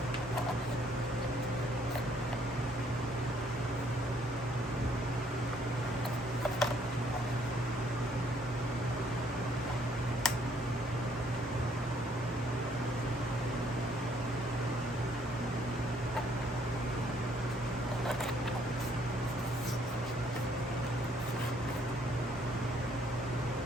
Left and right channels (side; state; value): both; normal; correlation 0.65